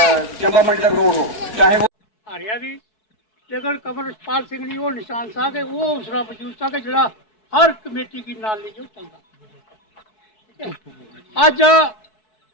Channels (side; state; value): right; late; 4.6 ms